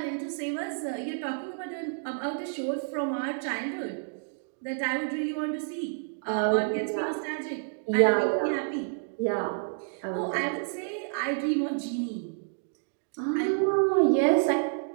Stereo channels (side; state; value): left; silent; digital silence